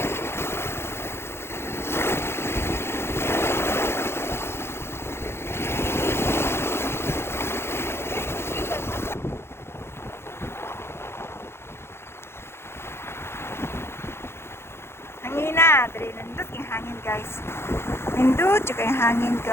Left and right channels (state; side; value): late; right; 0.12 ms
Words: Hangin na, dali nindot yung hangin guys. Nindot yung hangin